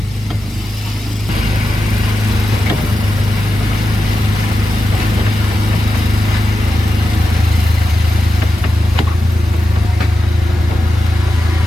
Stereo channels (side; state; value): both; normal; correlation 0.90